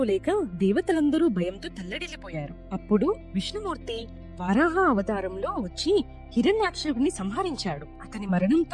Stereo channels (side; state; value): both; identical; correlation 1.00